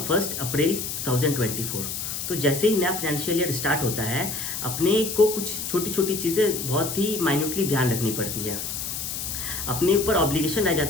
1 अप्रैल 2024। तो जैसे ही नया फाइनेंशियल ईयर स्टार्ट होता है, अपने को कुछ छोटी छोटी चीज़ें बहुत ही माइन्यूटली ध्यान रखनी पड़ती है। अपने ऊपर ऑब्लिगेशन रह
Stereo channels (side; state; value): left; noise; hiss, 5 dB below the sound